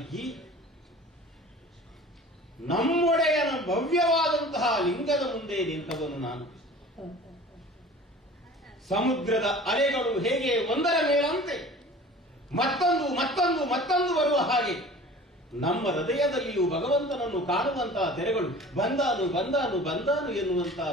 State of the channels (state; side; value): normal; both; correlation 0.43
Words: ಈ ನಮ್ಮೊಡೆಯನ ಭವ್ಯವಾದಂತಹ ಲಿಂಗದ ಮುಂದೆ ನಿಂತವನು ನಾನು. ಸಮುದ್ರದ ಅಲೆಗಳು ಹೇಗೆ ಒಂದರ ಮೇಲಂತೆ ಮತ್ತೊಂದು ಮತ್ತೊಂದು ಮತ್ತೊಂದು ಬರುವ ಹಾಗೆ ನಮ್ಮ ಹೃದಯದಲ್ಲಿಯೂ ಭಗವಂತನನ್ನು ಕಾಣುವಂತಹ ತೆರೆಗಳು ಬಂದಾನು ಬಂದಾನು ಬಂದಾನು ಎನ್ನುವಂತಹ